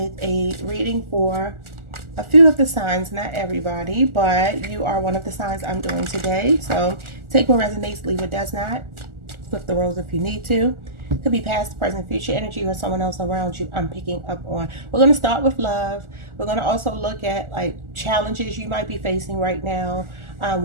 a reading for a few of the signs, not everybody, but you are one of the signs I'm doing today. So take what resonates, leave what does not. Flip the roles if you need to. Could be past, present, future energy or someone else around you I'm picking up on. We're going to start with love. We're going to also look at like challenges you might be facing right now.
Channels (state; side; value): late; left; 1.4 ms